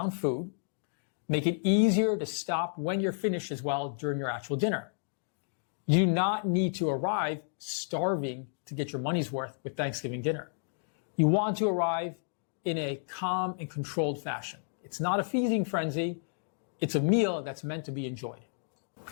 food, make it easier to stop when you're finished as well during your actual dinner. You do not need to arrive starving to get your money's worth with Thanksgiving dinner. You want to arrive in a calm and controlled fashion. It's not a feasting frenzy. It's a meal that's meant to be enjoyed.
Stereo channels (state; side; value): silent; right; digital silence